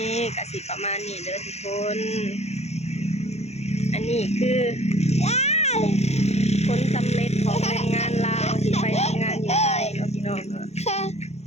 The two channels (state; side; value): late; right; 0.31 ms